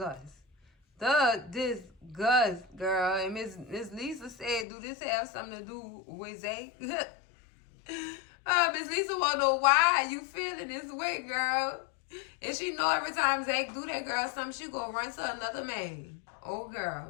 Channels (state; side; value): drops out; right; at 4.7 s